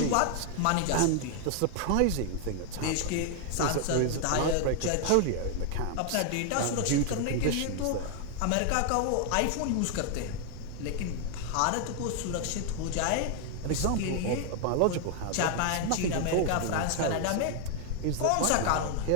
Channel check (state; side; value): different; both; correlation 0.00